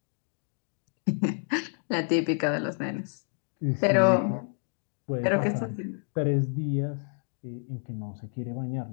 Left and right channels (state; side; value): silent; right; 58 dB below the other